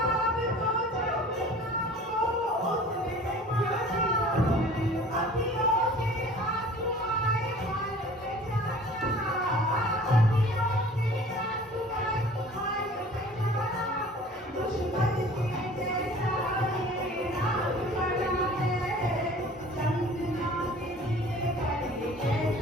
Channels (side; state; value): both; normal; correlation 0.47